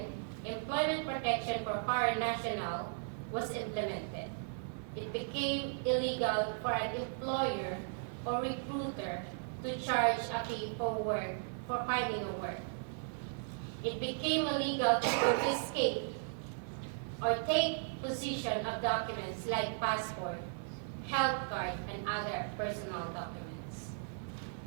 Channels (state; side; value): silent; left; 53 dB below the other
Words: Employment Protection for Foreign National, was implemented. It became illegal for an employer or recruiter to charge a fee for finding a work. It became illegal to confiscate or take possession of documents like passport, health card, and other personal documents.